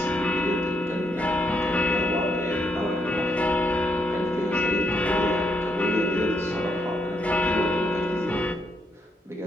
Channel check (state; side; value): normal; both; correlation 0.76